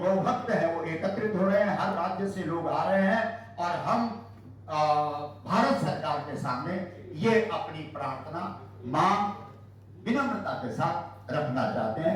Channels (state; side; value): identical; both; correlation 1.00